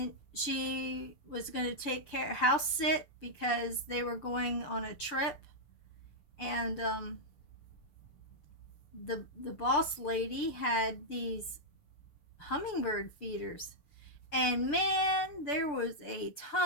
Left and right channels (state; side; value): late; right; 6.8 ms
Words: she was going to take care house sit because they were going on a trip, and the boss lady had these hummingbird feeders, and man, there was a